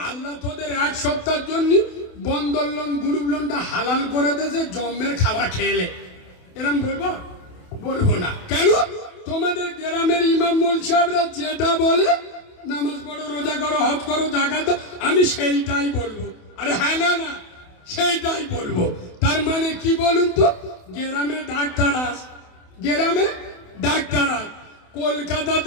আল্লাহ তোদের 1 সপ্তাহের জন্য বন্দর লোন গ্রুপ লোনটা হালাল করে দিয়েছে জম্মের খাওয়া খেলে, এরকম বলবো? বলবো না। কেন? তোমাদের গ্রামের ইমাম মোল সাহেবরা যেটা বলে, নামাজ পড়ো, রোজা করো, হজ করো, জাকাত দাও, আমি সেইটাই বলবো। আরে হ্যাঁ, না না, সেইটাই বলবো। তার মানে কি বলুন তো? গ্রামে ডাক্তার আস, গ্রামে ডাক্তার আস, কলকাতা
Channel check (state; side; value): late; right; 28 ms